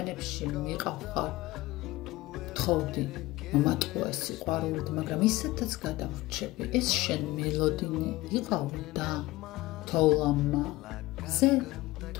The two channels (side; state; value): right; quieter; 18.9 dB